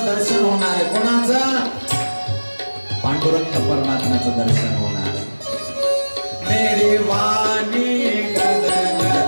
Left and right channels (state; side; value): inverted; both; correlation -1.00